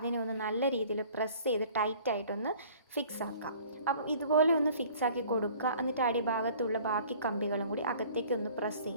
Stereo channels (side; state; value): both; inverted; correlation -0.51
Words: ഒന്ന് നല്ല രീതിയിൽ പ്രസ് ചെയ്ത് ടൈറ്റായിട്ടൊന്ന് ഫിക്സ് ആക്കാം. അപ്പം ഇതുപോലെ ഒന്ന് ഫിക്സ് ആക്കി കൊടുക്കുക. എന്നിട്ട് അടിഭാഗത്തുള്ള ബാക്കി കമ്പികളും കൂടി അകത്തേക്ക് ഒന്ന് പ്രസ്